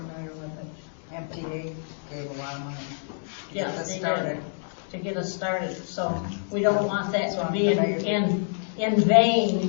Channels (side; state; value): right; silent; digital silence